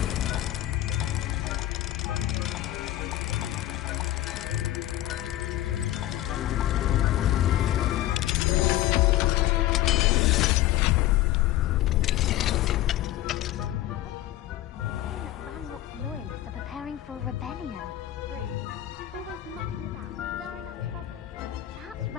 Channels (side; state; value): right; quieter; 14.5 dB